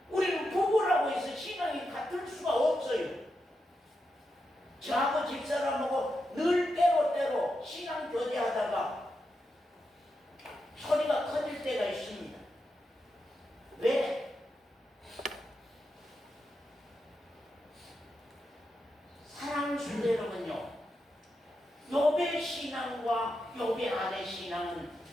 우리는 부부라고 해서 신앙이 같을 수가 없어요. 저하고 집사람하고 늘 때로 신앙 교제하다가 소리가 커질 때가 있습니다. 왜? 사랑 순대로는요. 욥의 신앙과 욥의 아내 신앙은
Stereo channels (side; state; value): both; normal; correlation 0.86